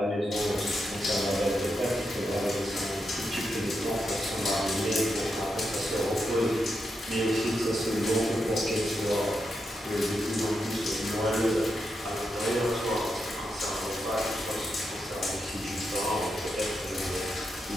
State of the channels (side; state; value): both; normal; correlation 0.85